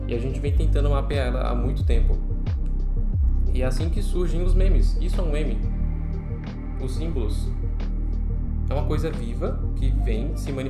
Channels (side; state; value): both; identical; correlation 1.00